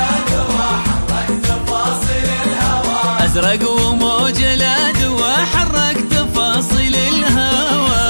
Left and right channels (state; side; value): inverted; both; correlation -1.00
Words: أزرق وموج الأدوى حرك تفاصيل الهوى.